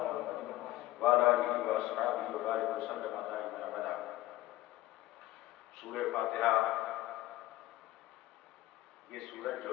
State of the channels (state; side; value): quieter; right; 16.6 dB